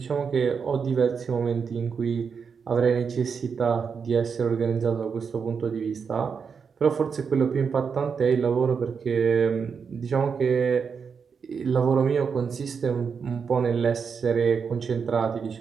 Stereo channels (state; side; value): quieter; left; 6.1 dB